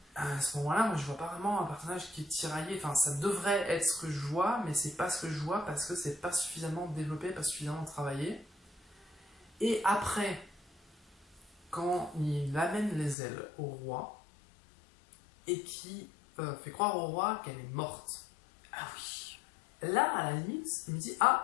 à ce moment-là, moi je vois pas vraiment un personnage qui est tiraillé. Enfin, ça devrait être ce que je vois, mais c'est pas ce que je vois parce que c'est pas suffisamment développé, pas suffisamment travaillé. Et après, quand il amène les ailes au roi et qui fait croire au roi qu'elle est morte. Ah oui. Là, à la limite, il me dit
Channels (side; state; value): right; drops out; at 13.2 s